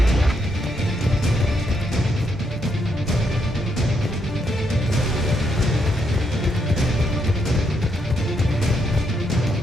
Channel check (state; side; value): normal; both; correlation 0.77